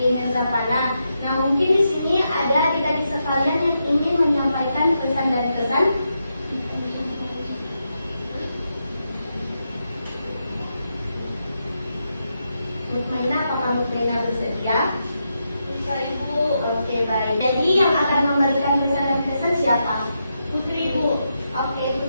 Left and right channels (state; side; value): inverted; both; correlation -0.84